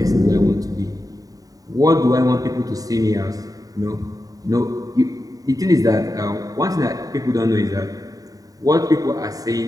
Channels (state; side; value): late; left; 0.18 ms